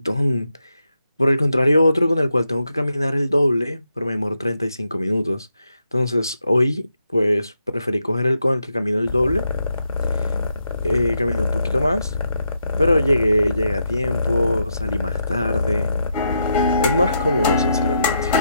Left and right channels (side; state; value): both; inverted; correlation -0.81